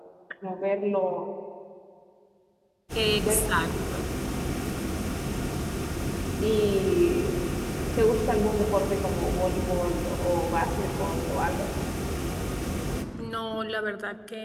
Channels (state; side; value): identical; both; correlation 1.00